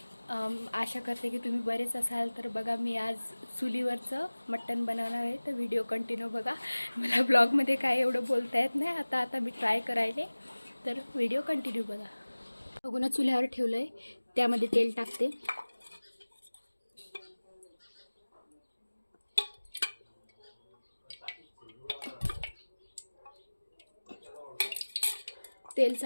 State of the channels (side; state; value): both; inverted; correlation -1.00